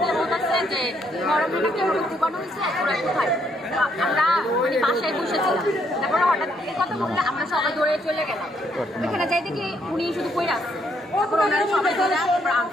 দিয়ে বলতেছে যে মরমটা কেউ দোকানো হয়েছে, ওরা কোথায়। আমরা মানে বাসায় বসেছিলাম, তারপরে হঠাৎ এই কথা বললে আমরা সবাই দৌড়ে চলে গেলাম। এখানে যাই দেখি উনি শুধু কইরা আসছে, তারপর ওনারা সবাই চলে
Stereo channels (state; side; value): normal; both; correlation 0.72